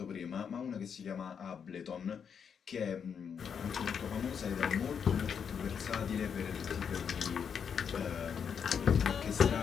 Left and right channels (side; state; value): right; quieter; 7.1 dB